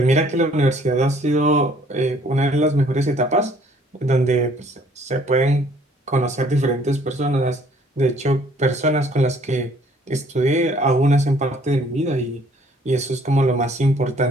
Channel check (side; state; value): both; normal; correlation 0.60